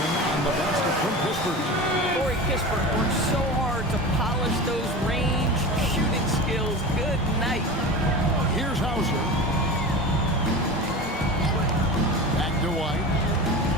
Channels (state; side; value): normal; both; correlation 0.30